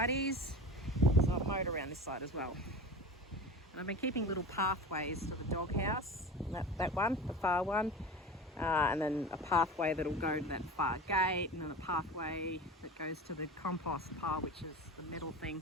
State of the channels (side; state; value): both; normal; correlation 0.32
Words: So I've mowed around this side as well. And I've been keeping little pathways to the doghouse, that one, the far one. And then a pathway that'll go to that far gate, and then a pathway that goes to the compost pile, which is the metal